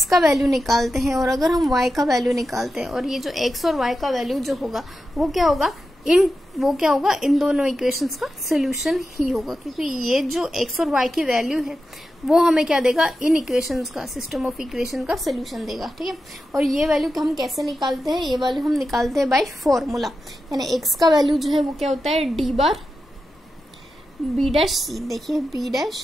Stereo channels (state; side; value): normal; both; correlation 0.90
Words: का वैल्यू निकालते हैं और अगर हम y का वैल्यू निकालते हैं, और ये जो x और y का वैल्यू जो होगा वो क्या होगा, इन दोनों इक्वेशंस का सोल्यूशन ही होगा, क्योंकि ये जो x और y की वैल्यू है वो हमें क्या देगा, इन इक्वेशंस का, सिस्टम ऑफ इक्वेशन का सोल्यूशन देगा। ठीक है, और ये वैल्यू हम कैसे निकालते हैं, ये वैल्यू हम निकालते हैं बाय फॉर्मूला, यानी x का वैल्यू जो है वो क्या होता है, d bar b dash c, देखिए b